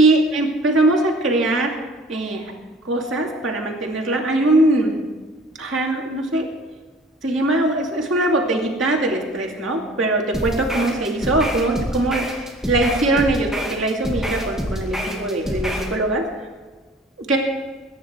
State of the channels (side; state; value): both; normal; correlation 0.48